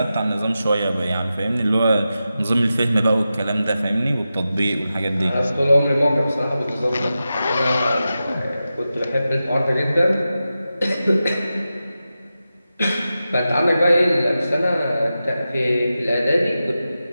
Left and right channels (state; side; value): inverted; both; correlation -0.92